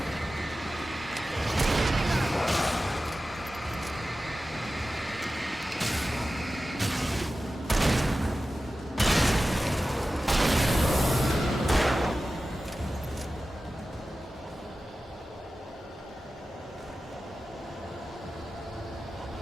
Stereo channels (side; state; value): both; normal; correlation 0.95